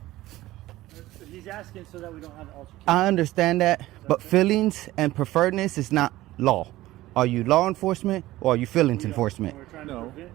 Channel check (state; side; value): quieter; left; 16.6 dB